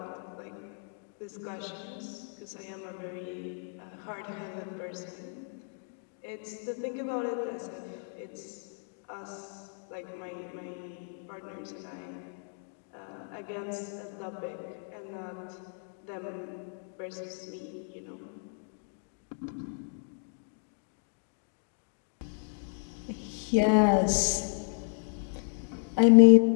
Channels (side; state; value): right; silent; 56 dB below the other